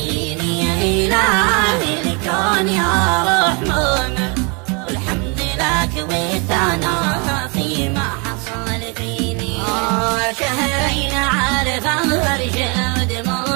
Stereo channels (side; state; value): left; quieter; 32.3 dB